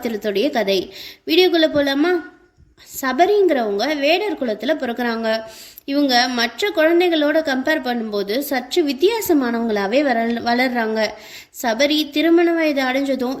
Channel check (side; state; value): both; identical; correlation 1.00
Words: கதை. வீடியோக்குள்ளே போகலாமா? சபரிங்கிறவங்க வேடர் குலத்தில் பிறக்கிறாங்க. இவங்க மற்ற குழந்தைகளோட கம்பேர் பண்ணும்போது சற்று வித்தியாசமானவங்களாவே வளர்றாங்க. சபரி திருமண வயது அடைஞ்சதும்